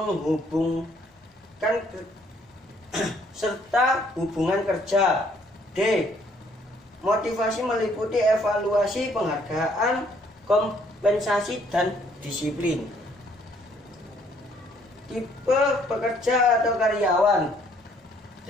serta hubungan kerja. D, motivasi meliputi evaluasi, penghargaan, kompensasi, dan disiplin. Tipe pekerja atau karyawan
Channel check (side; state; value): both; normal; correlation 0.64